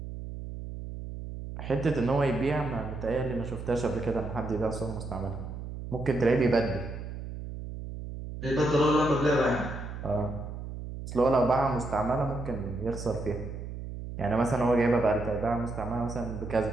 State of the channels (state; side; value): noise; right; hum, 8 dB below the sound